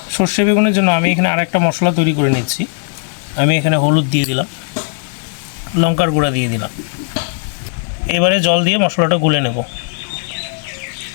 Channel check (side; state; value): right; silent; digital silence